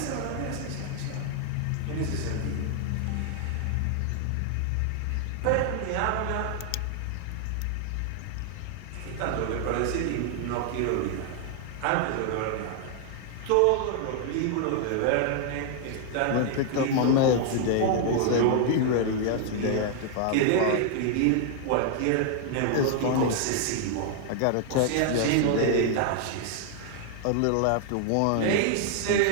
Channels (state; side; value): different; both; correlation 0.00